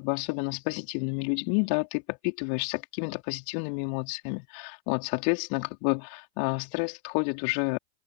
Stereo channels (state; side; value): silent; right; 58 dB below the other